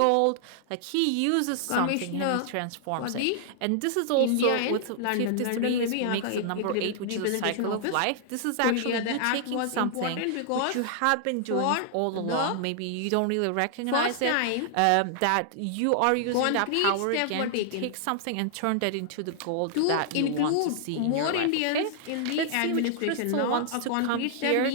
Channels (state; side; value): different; both; correlation -0.01